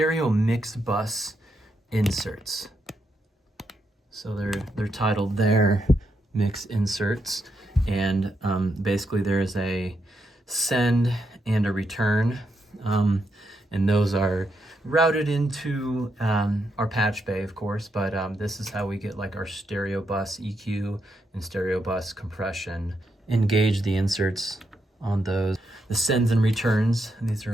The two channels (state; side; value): normal; both; correlation 0.81